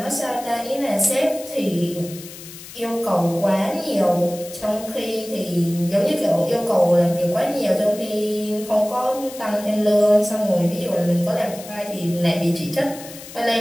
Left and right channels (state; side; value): noise; left; hiss, 15 dB below the sound